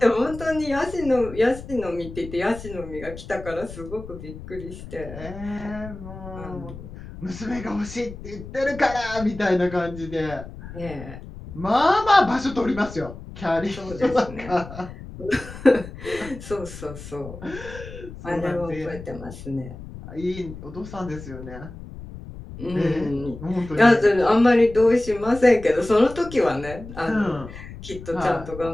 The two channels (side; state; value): left; noise; rumble, 13 dB below the sound